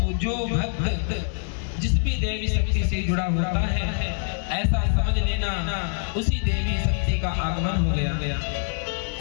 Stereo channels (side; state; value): right; silent; digital silence